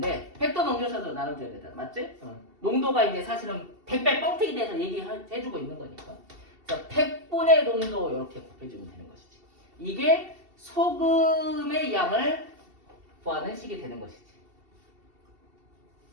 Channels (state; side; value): late; left; 2.7 ms